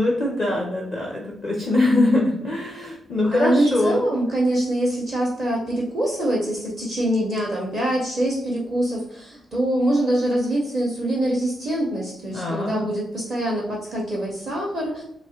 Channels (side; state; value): both; normal; correlation 0.84